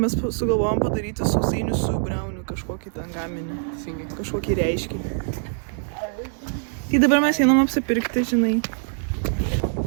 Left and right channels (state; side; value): silent; left; 63 dB below the other